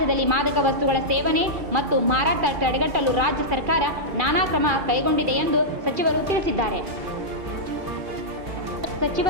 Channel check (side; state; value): left; late; 2.4 ms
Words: ಮಾದಕ ವಸ್ತುಗಳ ಸೇವನೆ ಮತ್ತು ಮಾರಾಟ ತಡೆಗಟ್ಟಲು ರಾಜ್ಯ ಸರ್ಕಾರ ನಾನಾ ಕ್ರಮ ಕೈಗೊಂಡಿದೆ ಎಂದು ಸಚಿವರು ತಿಳಿಸಿದ್ದಾರೆ. ಸಚಿವ